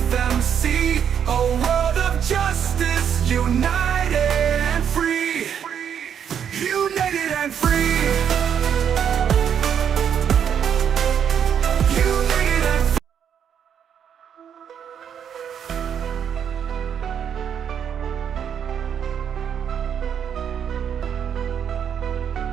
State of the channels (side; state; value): left; quieter; 8.4 dB